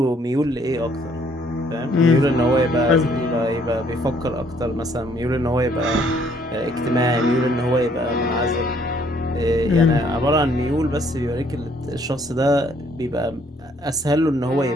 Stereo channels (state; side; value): normal; both; correlation 0.64